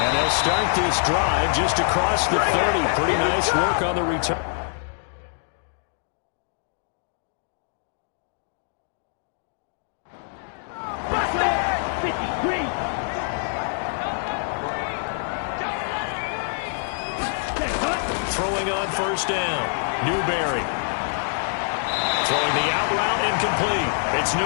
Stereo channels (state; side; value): silent; right; digital silence